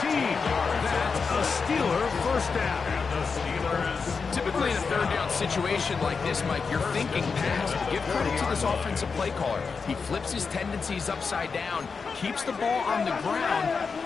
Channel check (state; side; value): quieter; right; 5.1 dB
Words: 13. That's a Steeler first down. Typically in a third down situation like this, Mike, you're thinking pass. But give credit to this offensive play caller. He flips his tendencies upside down, keeps the ball on the ground.